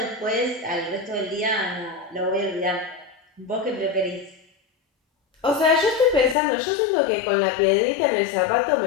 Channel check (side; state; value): right; drops out; at 6.4 s